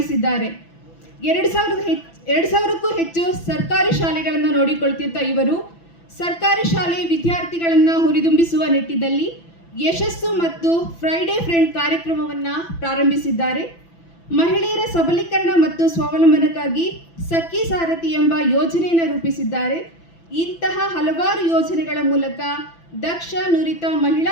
2000ಕ್ಕೂ ಹೆಚ್ಚು ಸರ್ಕಾರಿ ಶಾಲೆಗಳನ್ನು ನೋಡಿಕೊಳ್ತಿದ್ದ ಇವರು ಸರ್ಕಾರಿ ಶಾಲೆ ವಿದ್ಯಾರ್ಥಿಗಳನ್ನು ಹುರಿದುಂಬಿಸುವ ನಿಟ್ಟಿನಲ್ಲಿ ಯಶಸ್ಸು ಮತ್ತು ಫ್ರೈಡೇ ಫ್ರೆಂಡ್ ಕಾರ್ಯಕ್ರಮವನ್ನು ಪ್ರಾರಂಭಿಸಿದ್ದಾರೆ. ಮಹಿಳೆಯರ ಸಬಲೀಕರಣ ಮತ್ತು ಸ್ವಾವಲಂಬನಕ್ಕಾಗಿ ಸಖಿ ಸಾರಥಿ ಎಂಬ ಯೋಜನೆಯನ್ನು ರೂಪಿಸಿದ್ದಾರೆ. ಇಂತಹ ಹಲವಾರು ಯೋಜನೆಗಳ ಮೂಲಕ ದಕ್ಷ, ನುರಿತ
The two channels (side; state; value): right; late; 6.0 ms